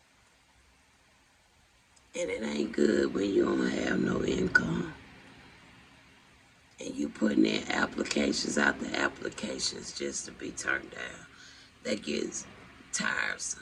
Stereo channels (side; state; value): both; identical; correlation 1.00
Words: And it ain't good when you don't have no income. And you putting in applications after applications just to be turned down. That gets tiresome.